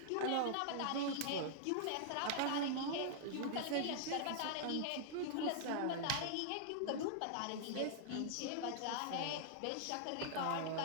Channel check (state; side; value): different; both; correlation -0.01